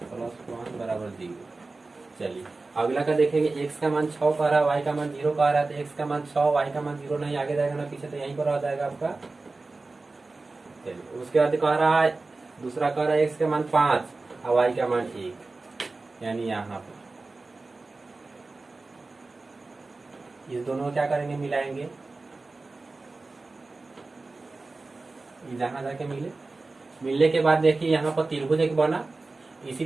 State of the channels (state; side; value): quieter; left; 3.5 dB